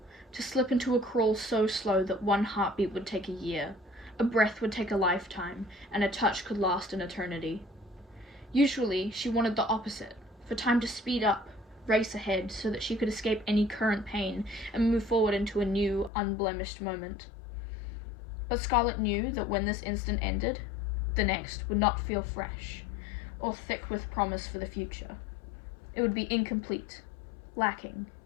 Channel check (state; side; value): drops out; right; at 16.1 s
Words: to slip into a crawl so slow that one heartbeat would take a year, a breath would take a lifetime, and a touch could last an eternity. Usually, she wanted the opposite, for time to speed up, race ahead, so that she could escape any current pain and move forward into a new, unblemished moment. But Scarlet knew that when this instant ended, the next would not feel fresh, or thick with promise for the future. It would be incomplete, lacking,